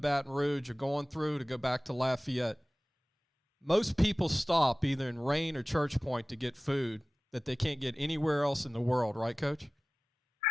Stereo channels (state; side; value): normal; both; correlation 0.96